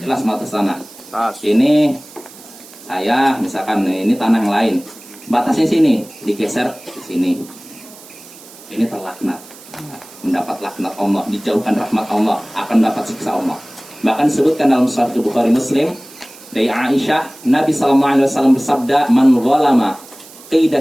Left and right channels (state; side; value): noise; right; hiss, 20 dB below the sound